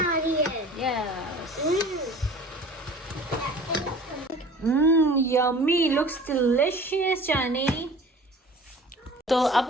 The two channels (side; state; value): both; normal; correlation 0.44